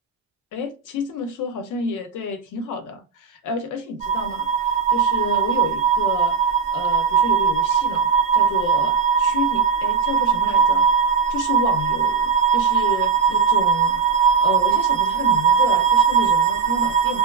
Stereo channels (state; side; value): quieter; left; 5.6 dB